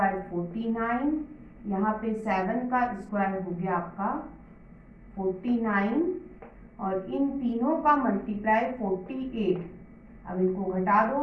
49, यहाँ पे 7 का स्क्वायर हो गया आपका 49, और इन तीनों का मल्टीप्लाई 48। अब इनको घटा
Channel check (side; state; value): both; identical; correlation 1.00